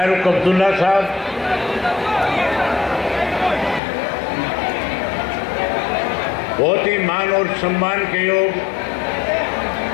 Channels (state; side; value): drops out; right; at 3.8 s